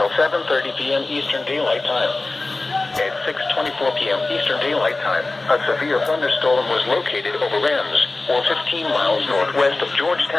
7:30 p.m. Eastern Daylight Time. At 6:24 p.m. Eastern Daylight Time, a severe thunderstorm was located over RHEMS, or 15 miles northwest of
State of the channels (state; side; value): quieter; right; 3.2 dB